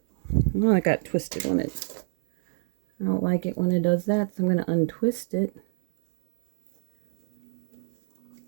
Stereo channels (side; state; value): left; silent; digital silence